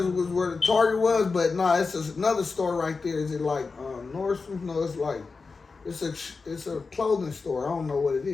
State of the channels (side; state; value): right; quieter; 4.4 dB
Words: was where the Target was, but nah, it's another store right there. Is it like Nordstrom? No, it's like it's a clothing store. I don't know what it